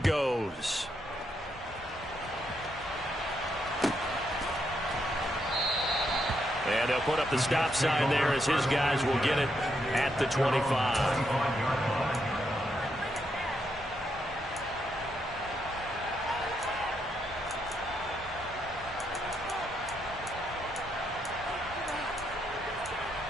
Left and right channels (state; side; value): normal; both; correlation 0.79